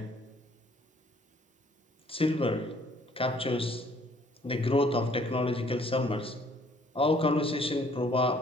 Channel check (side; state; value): both; normal; correlation 0.61